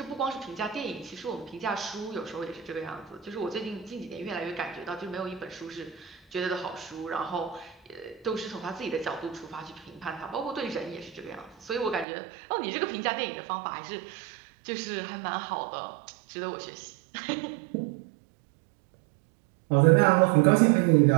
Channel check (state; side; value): drops out; left; at 12.1 s